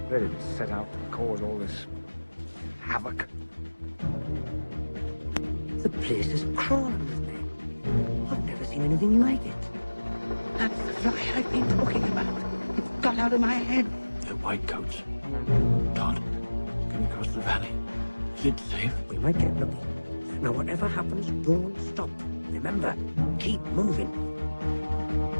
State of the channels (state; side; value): inverted; both; correlation -1.00